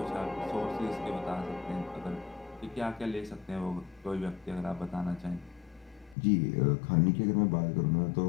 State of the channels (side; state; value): right; drops out; at 6.2 s